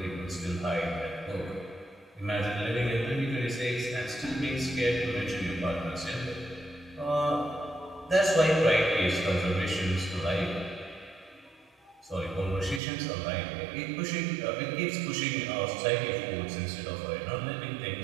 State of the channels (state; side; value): drops out; left; at 12.8 s